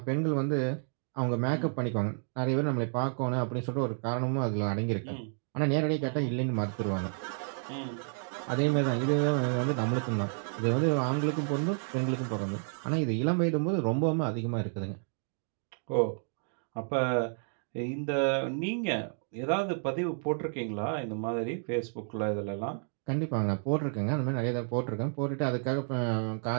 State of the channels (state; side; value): silent; left; 57 dB below the other